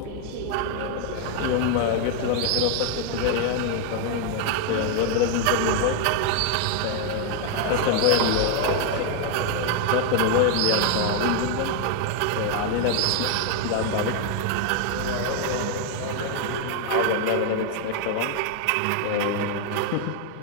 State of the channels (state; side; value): different; both; correlation 0.00